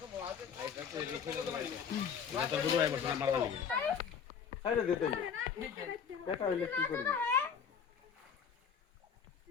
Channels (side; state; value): right; quieter; 7.1 dB